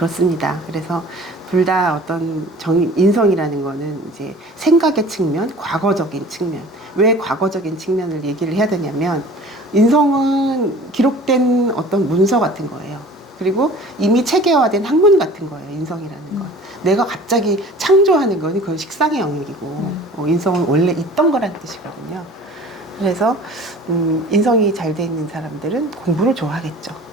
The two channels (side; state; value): both; normal; correlation 0.45